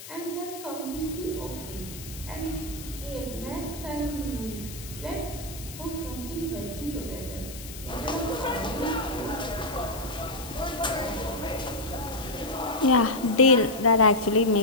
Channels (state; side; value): noise; left; hiss, 13 dB below the sound